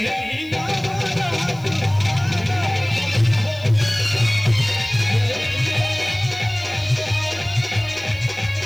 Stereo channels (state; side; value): noise; left; hiss, 26 dB below the sound